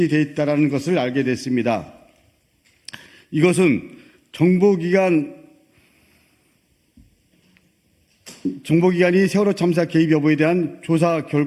있다는 것을 알게 됐습니다. 이것은 정보기관이 세월호 참사 개입 여부에 대한 조사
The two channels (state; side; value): identical; both; correlation 1.00